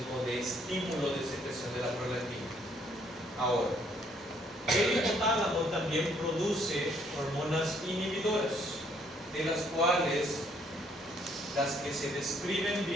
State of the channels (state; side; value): normal; both; correlation 0.66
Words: de estímulo de secreción de la prolactina. Ahora, el hipotálamo también produce hormonas inhibidoras, de las cuales las que se describen